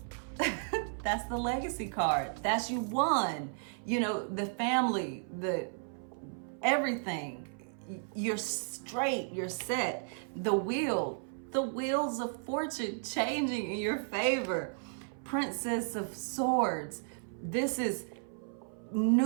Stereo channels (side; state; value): left; silent; 55 dB below the other